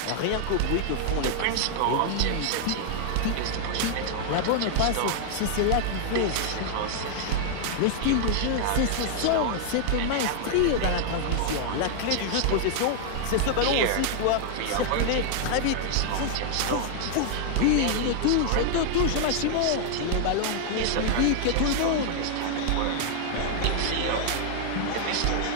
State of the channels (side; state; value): both; different; correlation -0.01